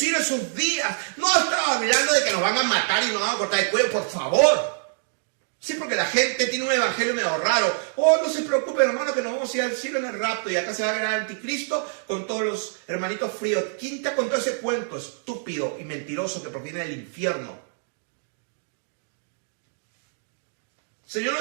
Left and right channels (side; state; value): left; silent; digital silence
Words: esos días. No estaba hablando de que nos van a matar y nos van a cortar el cuello, por favor. Sí, porque la gente tiene un evangelio medio raro. Oh, no se preocupen, hermano, que nos vamos a ir al cielo en el rapto y acá se va a ver al anticristo con todos los hermanitos fríos. ¿Quién te contó ese cuento estúpido y mentiroso que proviene del infierno? El Señor no